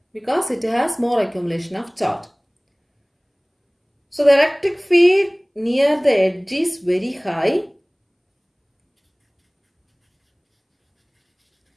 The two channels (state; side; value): identical; both; correlation 1.00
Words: because it has more accumulation of charge. So the electric field near the edge is very high